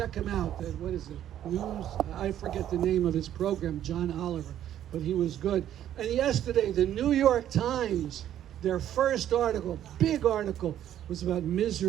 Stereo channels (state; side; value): quieter; left; 11.2 dB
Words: him out. What is it? News? I forget the name of his program, John Oliver, but he was good. And yesterday, the New York Times, their first article, big article, was about